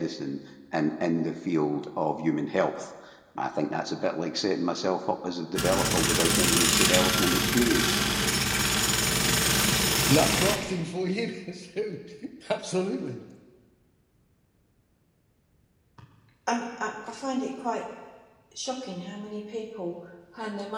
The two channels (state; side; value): identical; both; correlation 1.00